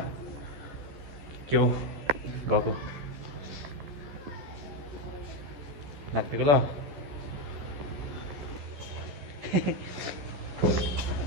के हो गएको लाग्दिएको ल।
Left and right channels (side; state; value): left; late; 14 ms